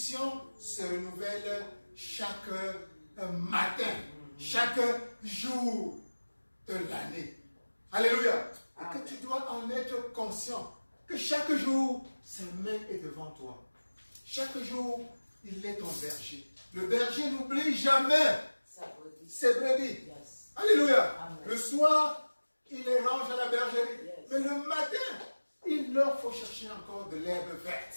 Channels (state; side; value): inverted; both; correlation -1.00